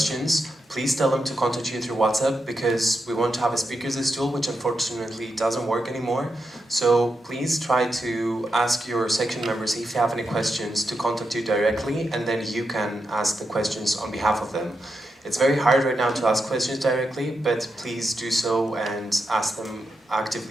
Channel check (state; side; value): normal; both; correlation 0.86